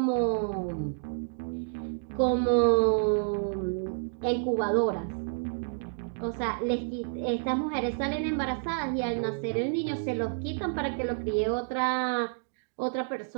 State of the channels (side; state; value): left; silent; digital silence